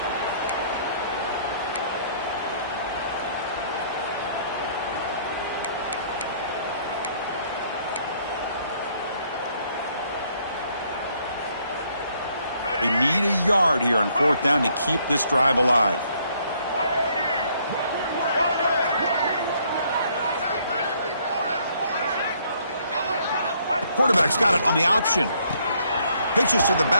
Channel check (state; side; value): inverted; both; correlation -0.66